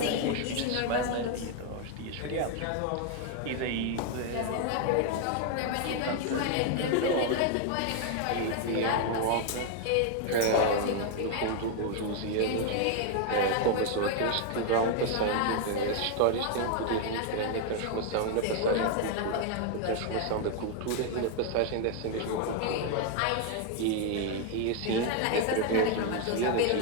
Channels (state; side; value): different; both; correlation 0.01